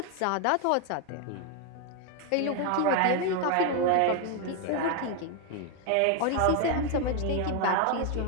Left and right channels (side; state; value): both; different; correlation 0.01